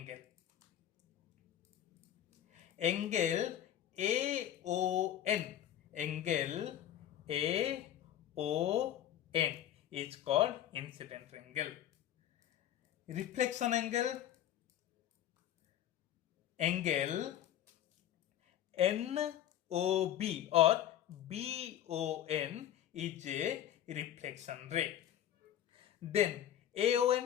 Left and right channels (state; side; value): quieter; right; 11.3 dB